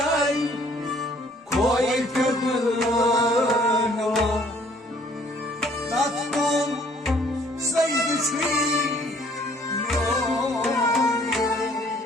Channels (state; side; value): normal; both; correlation 0.59